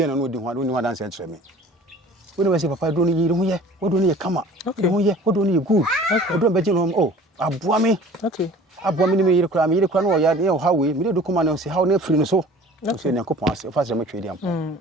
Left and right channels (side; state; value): both; normal; correlation 0.46